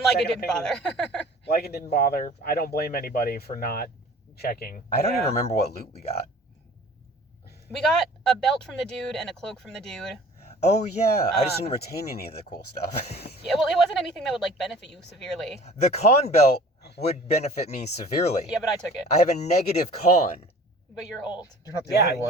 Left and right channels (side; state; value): both; normal; correlation 0.46